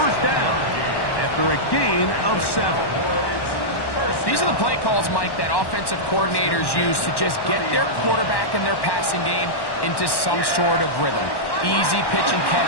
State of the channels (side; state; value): right; late; 1.1 ms